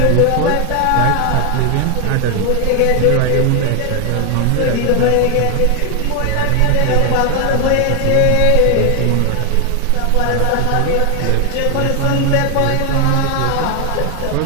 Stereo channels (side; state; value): both; different; correlation 0.00